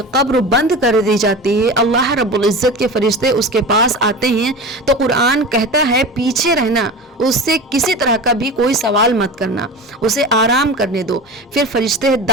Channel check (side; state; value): both; normal; correlation 0.31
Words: قبر بند کر دی جاتی ہے، اللہ رب العزت کے فرشتے اس کے پاس آتے ہیں تو قرآن کہتا ہے پیچھے رہنا، اس سے کسی طرح کا بھی کوئی سوال مت کرنا، اسے آرام کرنے دو۔ پھر فرشتے